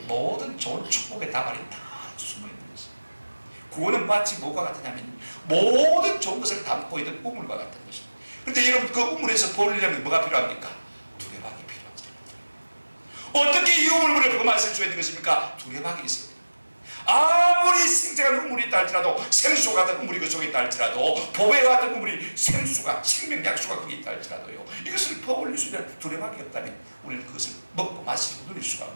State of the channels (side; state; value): both; inverted; correlation -1.00